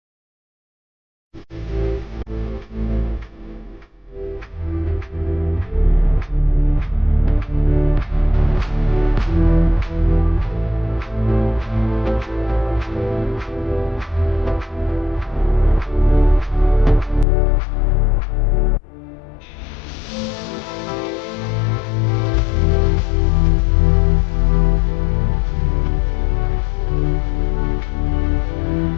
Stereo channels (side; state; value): right; drops out; at 17.2 s